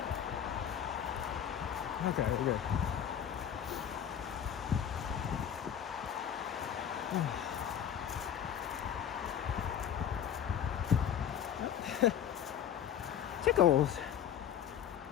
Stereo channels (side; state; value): right; quieter; 9.2 dB